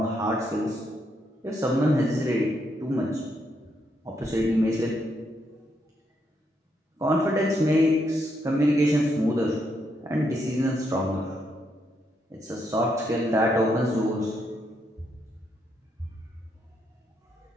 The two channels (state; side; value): normal; both; correlation 0.78